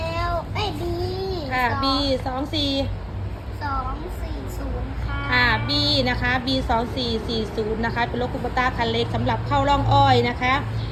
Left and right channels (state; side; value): identical; both; correlation 1.00